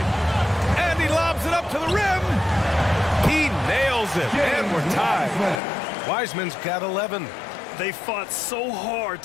And he lobs it up to the rim. He nails it. And we're tied. Wiseman's got 11. They fought so hard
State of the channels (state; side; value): drops out; right; at 5.6 s